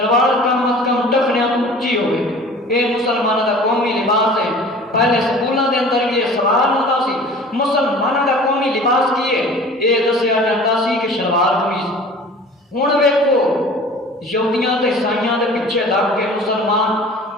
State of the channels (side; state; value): both; normal; correlation 0.44